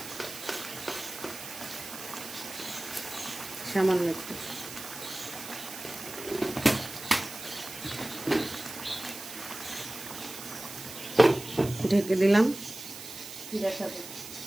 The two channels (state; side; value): noise; right; hiss, 12 dB below the sound